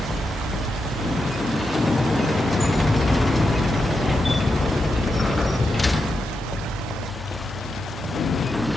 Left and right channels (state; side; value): normal; both; correlation 0.86